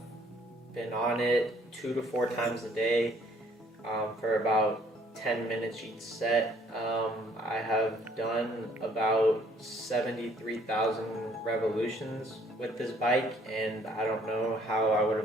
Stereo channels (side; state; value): both; normal; correlation 0.62